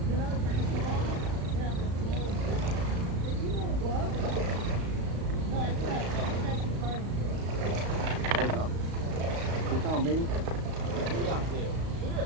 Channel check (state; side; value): late; left; 35 ms